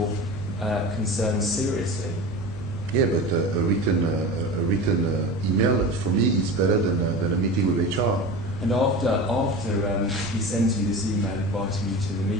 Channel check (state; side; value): normal; both; correlation 0.31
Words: concerns seriously. Yeah, but a written email for me is better than a meeting with HR. And after he sends you this email inviting you to the